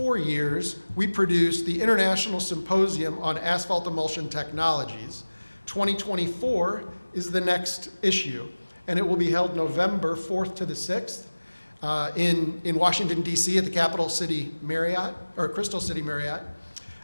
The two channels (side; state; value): both; inverted; correlation -1.00